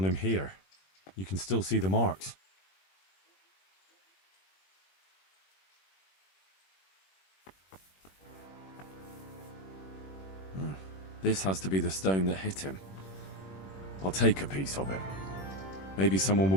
him here. You can still see the marks. This has to be the stone that hit him. I'll take a piece of it. Maybe someone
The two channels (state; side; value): late; right; 21 ms